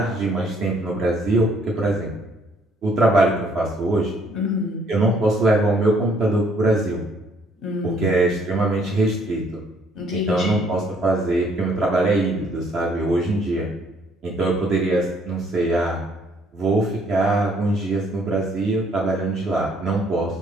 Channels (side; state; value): both; normal; correlation 0.64